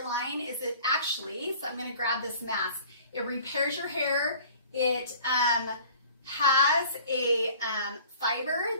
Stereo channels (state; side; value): inverted; both; correlation -0.48